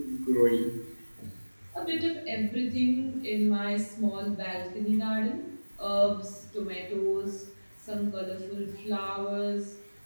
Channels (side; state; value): both; inverted; correlation -1.00